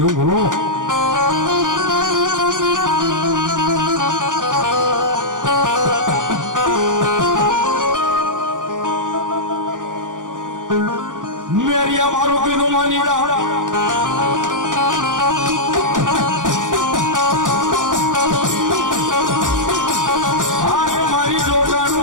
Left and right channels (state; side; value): late; left; 0.88 ms